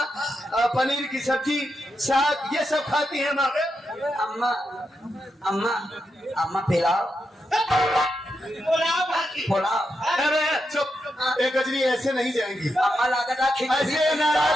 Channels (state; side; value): normal; both; correlation 0.85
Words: पनीर की सब्जी साग ये सब खाती है माँ। अम्मा अम्मा अम्मा पिलाओ पुलाव। अरे चुप, एक गजरी ऐसे नहीं जाएंगी। अम्मा लागत ऐसे